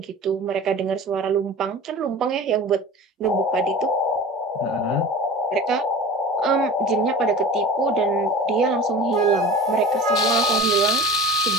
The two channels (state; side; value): normal; both; correlation 0.37